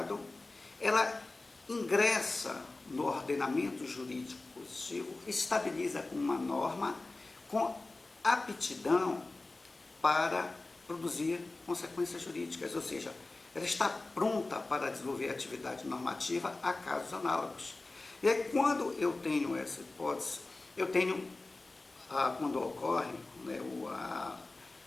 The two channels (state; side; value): quieter; right; 3.2 dB